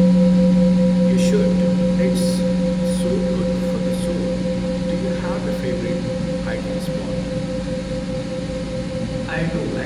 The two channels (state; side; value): identical; both; correlation 1.00